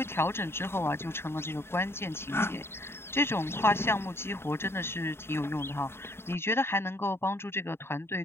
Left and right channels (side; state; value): right; late; 0.12 ms